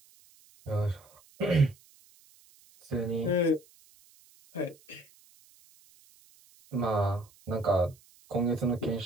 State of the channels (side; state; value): right; noise; hiss, 28 dB below the sound